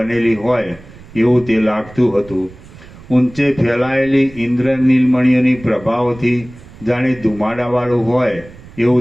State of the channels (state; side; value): noise; right; rumble, 20 dB below the sound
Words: હોય એવું તે લાગતું હતું. ઊંચે ફેલાયેલી ઇન્દ્રનીલમણીઓની પ્રભાવથી જાણે ધુમાડાવાળું હોય